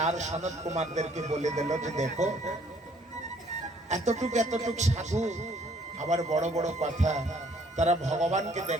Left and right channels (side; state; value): both; normal; correlation 0.62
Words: সনত কুমারদেরকে বলে দিল যে দেখো, এতটুক সাধু, আবার বড় বড় কথা, তারা ভগবানকে